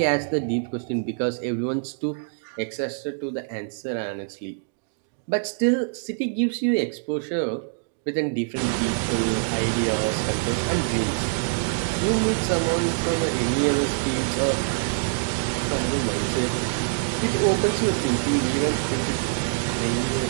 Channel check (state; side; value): silent; left; digital silence